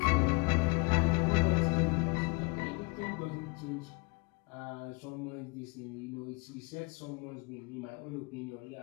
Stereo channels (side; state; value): right; quieter; 29.5 dB